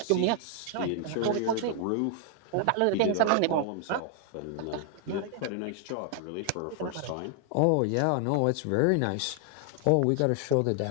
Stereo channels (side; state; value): both; different; correlation 0.00